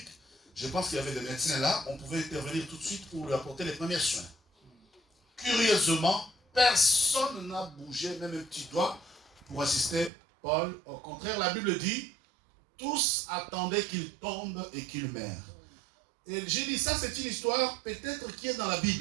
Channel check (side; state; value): left; drops out; at 10.1 s